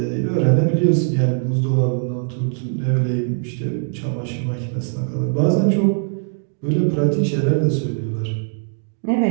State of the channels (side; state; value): left; silent; digital silence